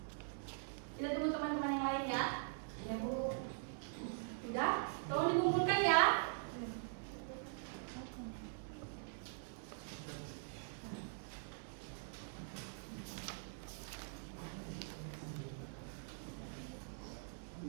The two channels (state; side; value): silent; left; digital silence